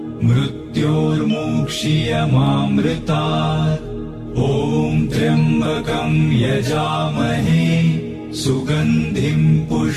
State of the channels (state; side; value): identical; both; correlation 1.00